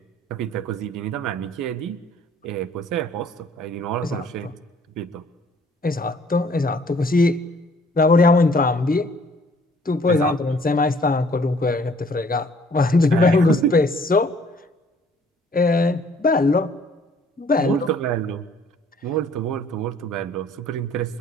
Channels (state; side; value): normal; both; correlation 0.58